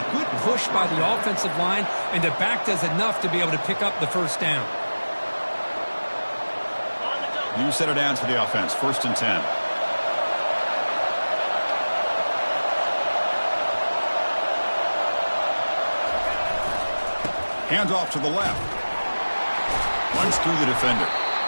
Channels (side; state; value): both; inverted; correlation -1.00